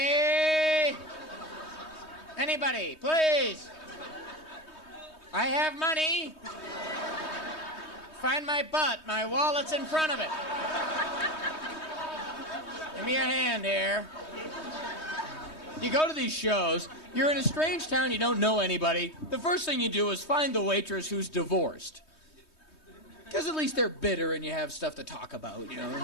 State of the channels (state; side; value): late; right; 3.2 ms